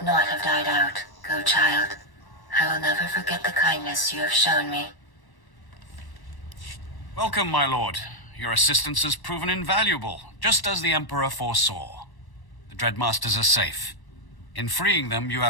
not have died out. Go, child. I will never forget the kindness you have shown me. Welcome, my lord. Your assistance has proven invaluable, just as the Emperor foresaw. The Dreadmasters are safe. In freeing them, you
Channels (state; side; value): late; right; 1.1 ms